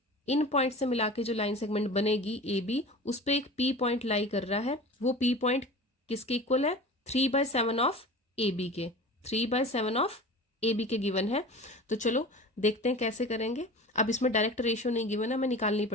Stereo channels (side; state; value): both; normal; correlation 0.36